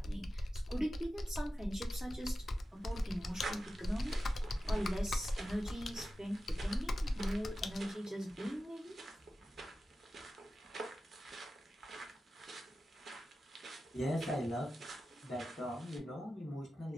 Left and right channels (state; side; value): normal; both; correlation 0.93